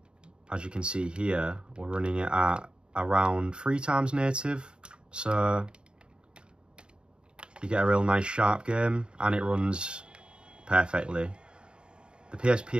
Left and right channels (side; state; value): left; late; 0.051 ms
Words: As you can see here, we're running it at around 3 times native. So you get a real nice sharp game, and it runs perfectly. The